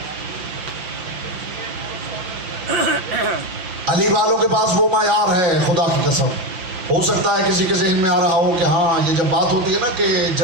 अली वालों के पास वो मायार है, खुदा की कसम। हो सकता है किसी के जहन में आ रहा हो कि हाँ, ये जब बात होती है ना कि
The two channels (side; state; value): left; late; 5.9 ms